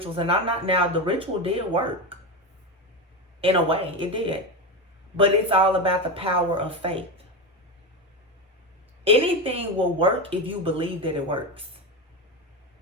And I'm not, now the ritual did work. In a way, it did. But it's all about the power of faith. Anything will work if you believe that it works.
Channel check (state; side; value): normal; both; correlation 0.16